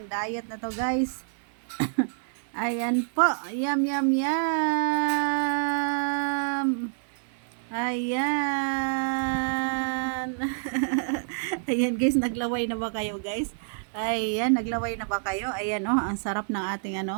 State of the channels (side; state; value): left; silent; digital silence